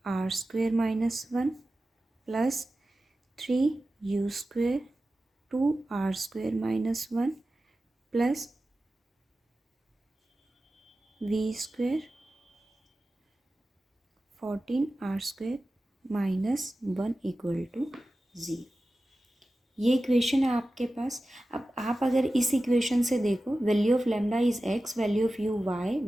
r square minus 1 plus 3 u square 2 r square minus 1 plus v square 14 r square minus 1 equal to 0. ये इक्वेशन है आपके पास. अब आप अगर इस इक्वेशन से देखो value of lambda is x, value of u y,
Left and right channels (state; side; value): normal; both; correlation 0.95